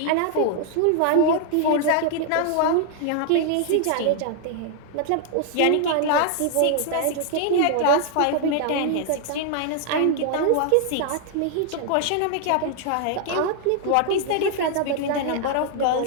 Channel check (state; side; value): different; both; correlation 0.00